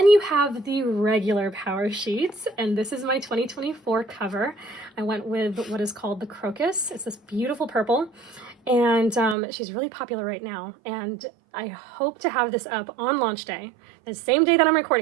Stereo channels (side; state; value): left; drops out; at 9.3 s